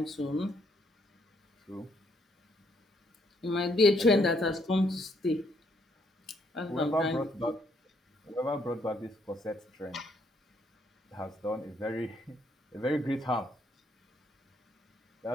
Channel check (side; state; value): both; normal; correlation 0.71